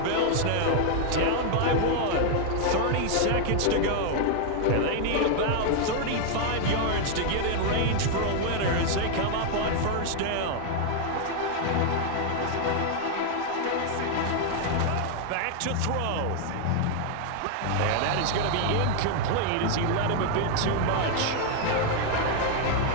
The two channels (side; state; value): both; different; correlation 0.00